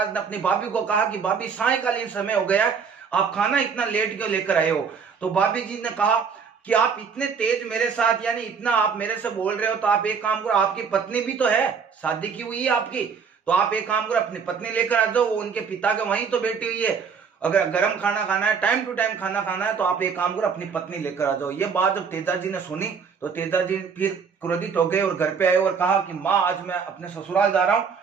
ने अपनी भाभी को कहा कि भाभी सायंकालीन समय हो गया है, आप खाना इतना लेट क्यों लेकर आए हो? तो भाभी जी ने कहा कि आप इतने तेज मेरे साथ, यानी इतना आप मेरे से बोल रहे हो, तो आप एक काम करो, आपकी पत्नी भी तो है, शादी की हुई है आपकी, तो आप एक काम करो अपनी पत्नी लेकर आ जाओ, वो उनके पिता के वहीं तो बैठी हुई है। अगर गर्म खाना खाना है, टाइम टू टाइम खाना खाना है, तो आप एक काम करो अपनी पत्नी लेकर आ जाओ। ये बात जब तेजाजी ने सुनी तो तेजाजी फिर क्रोधित हो गए और घर पे आए और कहा कि माँ, आज मैं अपने ससुराल जा रहा हूँ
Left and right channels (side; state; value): left; quieter; 6.0 dB